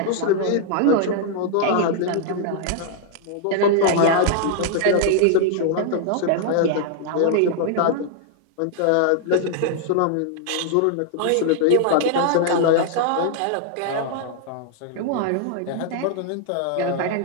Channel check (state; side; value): different; both; correlation 0.00